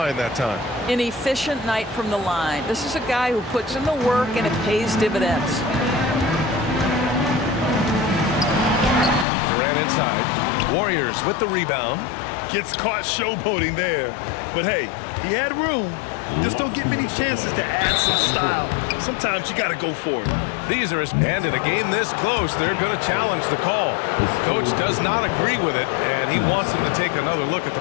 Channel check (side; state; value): right; drops out; at 9.2 s